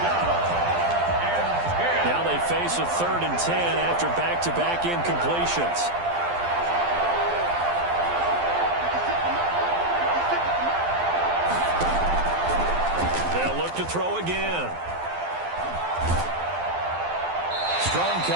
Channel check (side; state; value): left; late; 12 ms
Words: Now they they face a 3rd and 10 after back-to-back incompletions. They'll look to throw again. Strong